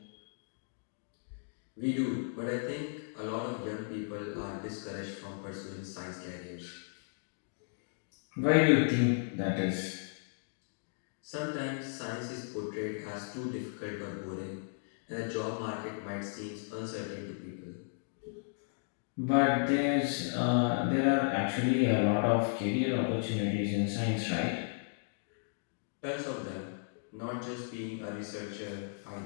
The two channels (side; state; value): right; silent; digital silence